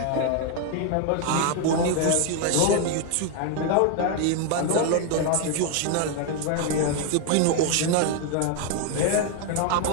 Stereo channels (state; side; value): different; both; correlation 0.01